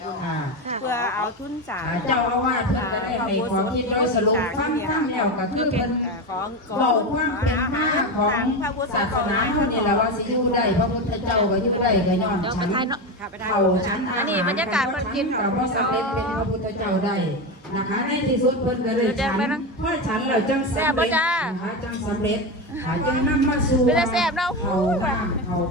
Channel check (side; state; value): both; normal; correlation 0.17